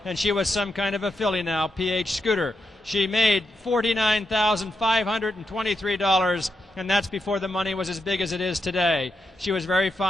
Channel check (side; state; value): both; normal; correlation 0.84